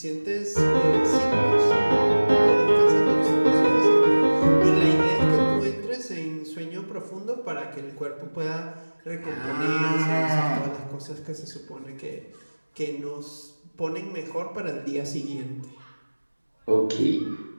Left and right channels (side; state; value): both; inverted; correlation -1.00